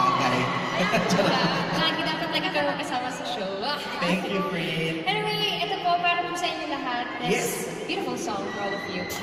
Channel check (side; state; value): both; identical; correlation 1.00